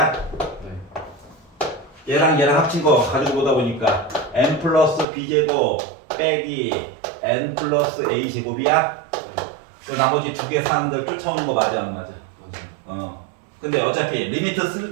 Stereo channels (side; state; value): left; drops out; at 5.1 s